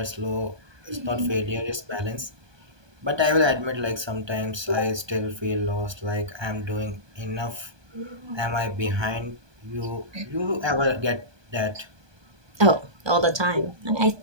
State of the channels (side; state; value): left; late; 1.2 ms